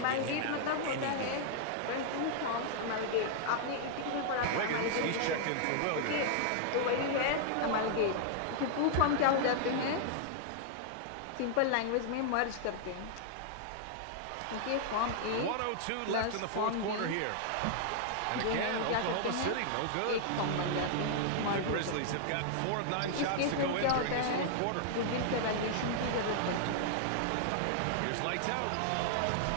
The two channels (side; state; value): both; different; correlation -0.01